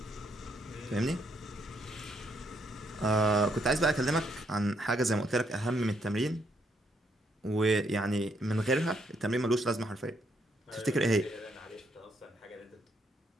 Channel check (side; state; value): both; normal; correlation 0.74